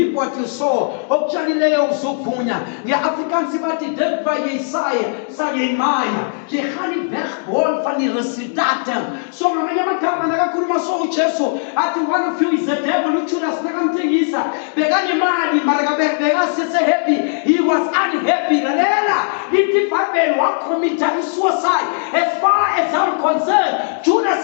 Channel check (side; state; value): right; silent; digital silence